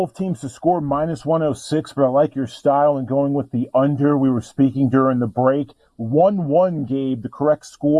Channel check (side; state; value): both; identical; correlation 1.00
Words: teams to score minus 106, but I like your style and going with the under. We were speaking during the break. 1-1, Gabe, the correct